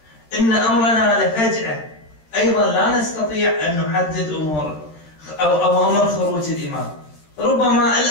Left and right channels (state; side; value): late; right; 13 ms